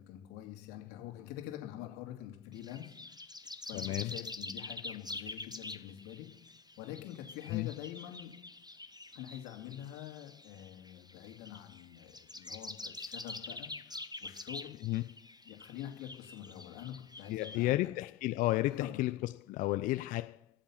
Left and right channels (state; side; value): quieter; right; 11.7 dB